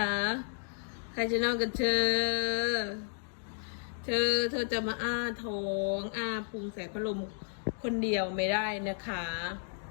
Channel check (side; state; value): right; silent; 56 dB below the other